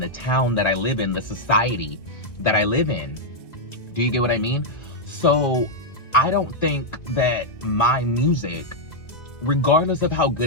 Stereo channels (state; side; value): late; right; 1.9 ms